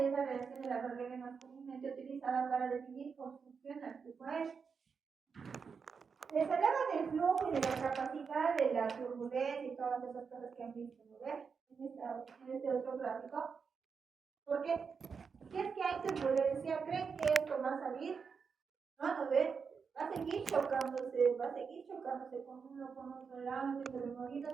la relación de la regla más comúnmente utilizada para definir cómo funciona el flujo aéreo. Les hablaba del flujo y de la capacidad de la turbulencia y todas esas cosas que han visto, ¿no ven? En este otro gráfico. Porque si es que hay turbulencia, ¿creen que esto va a salir? No ven. Va a seguir chocándose con uno, con otro lado, entre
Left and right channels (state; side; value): quieter; left; 5.8 dB